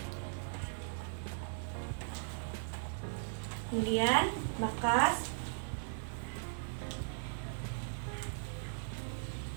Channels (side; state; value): left; silent; digital silence